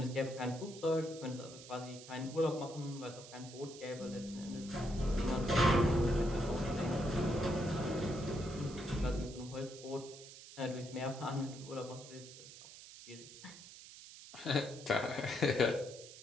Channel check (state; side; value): noise; right; hiss, 16 dB below the sound